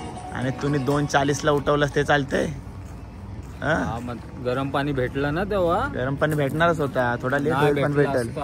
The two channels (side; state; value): both; identical; correlation 1.00